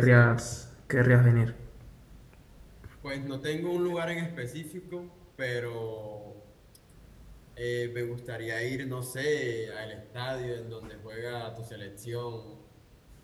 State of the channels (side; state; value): both; identical; correlation 1.00